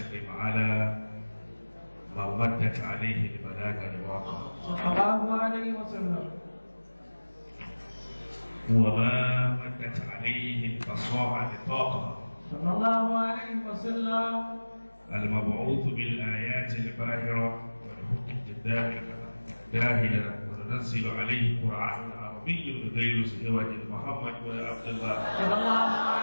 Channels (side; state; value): both; inverted; correlation -1.00